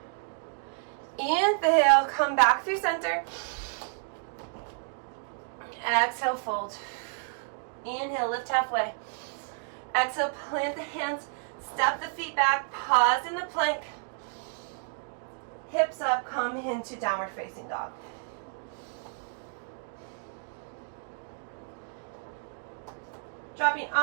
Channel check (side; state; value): left; silent; 58 dB below the other